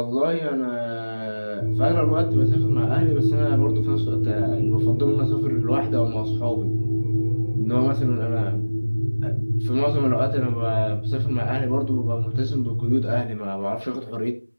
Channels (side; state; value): both; inverted; correlation -1.00